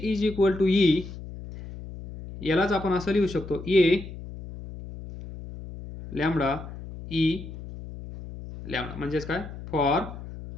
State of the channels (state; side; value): noise; left; hum, 12 dB below the sound